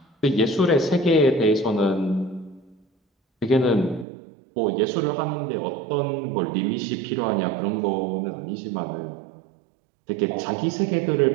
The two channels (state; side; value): drops out; left; at 4.0 s